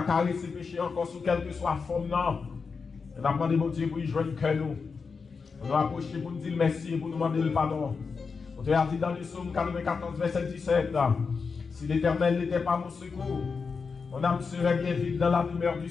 caresser le péché encore sous quelle que soit forme. Non. Et nous demandons mon Dieu pour y joindre que nous. On nous approcher pour nous dire merci et pour nous demander le pardon. On te a dit dans le psaume 94, verset 17. Si l'Éternel n'était pas mon secours, mon âme serait bien vide dans la demeure du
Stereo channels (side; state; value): right; quieter; 5.1 dB